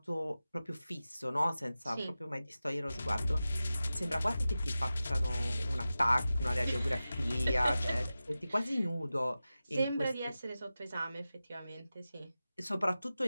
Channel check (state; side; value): inverted; both; correlation -0.94